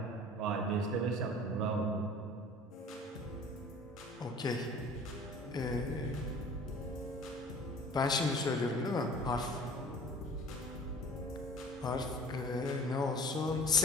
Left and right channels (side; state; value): both; normal; correlation 0.45